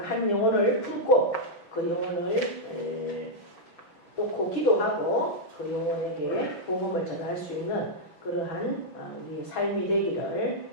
한 영혼을 품고 그 영혼을 놓고 기도하고 그 영혼에게 복음을 전할 수 있는 그러한 우리의 삶이 되기를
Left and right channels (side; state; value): right; late; 5.8 ms